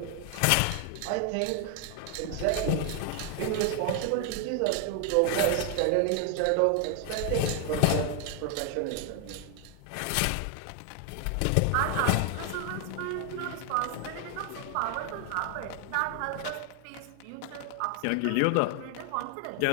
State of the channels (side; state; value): both; different; correlation 0.00